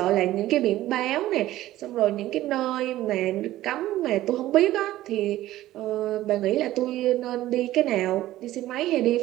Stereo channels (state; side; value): quieter; left; 15.1 dB